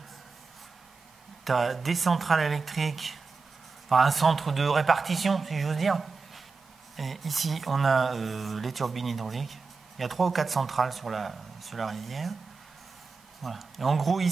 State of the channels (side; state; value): left; quieter; 4.5 dB